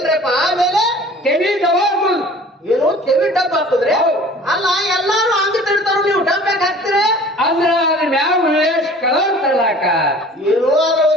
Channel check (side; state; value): both; normal; correlation 0.46